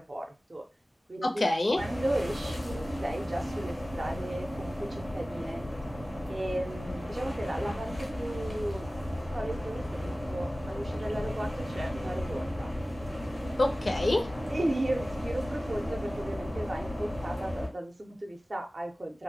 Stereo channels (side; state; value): both; normal; correlation 0.97